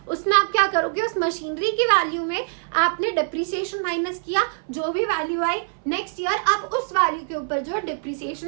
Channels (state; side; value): silent; left; 63 dB below the other